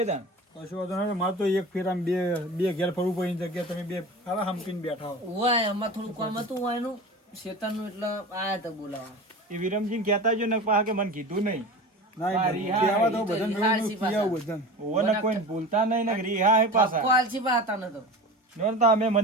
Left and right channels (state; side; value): normal; both; correlation 0.33